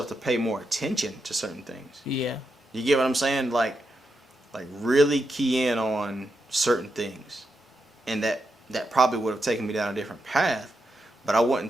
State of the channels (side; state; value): both; normal; correlation 0.85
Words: to pay more attention to certain things. Yeah. You get what I'm saying? Like really key in on certain things, and that probably would have taken me down a different path. But I